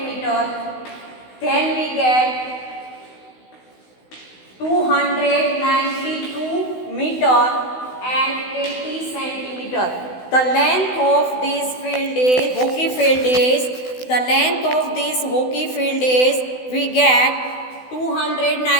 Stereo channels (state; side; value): late; right; 16 ms